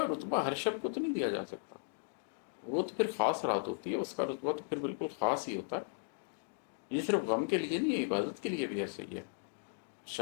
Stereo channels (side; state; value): right; silent; digital silence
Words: رتبہ ہر شب کو تو نہیں دیا جا سکتا، وہ تو پھر خاص رات ہوتی ہے، اس کا رتبہ تو پھر بالکل خاص ہی ہوتا ہے۔ یہ صرف غم کے لیے نہیں ہے، عبادت کے لیے بھی ایسے ہی ہے۔